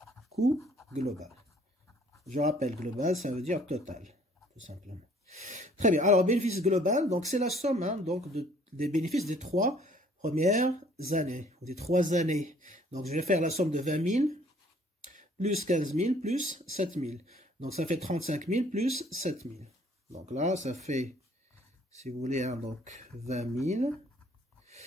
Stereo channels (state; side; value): normal; both; correlation 0.59